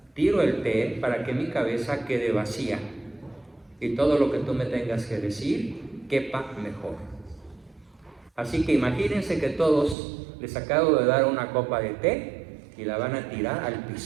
tiro el té para que mi cabeza quede vacía y todo lo que tú me tengas que decir quepa mejor. Así que imagínense que todos les acabo de dar una copa de té y la van a tirar al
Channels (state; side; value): drops out; left; at 10.0 s